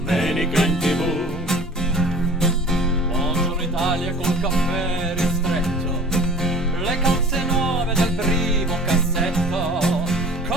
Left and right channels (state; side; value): normal; both; correlation 0.45